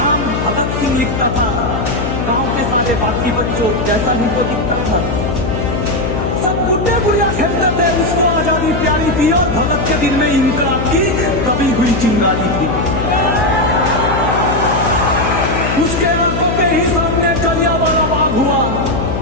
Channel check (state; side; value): noise; left; hum, 3 dB below the sound